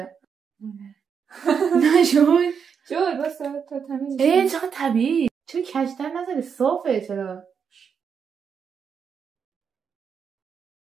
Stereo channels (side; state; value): left; quieter; 6.7 dB